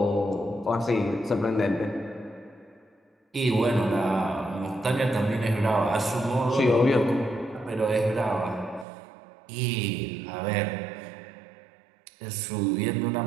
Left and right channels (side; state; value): left; drops out; at 8.8 s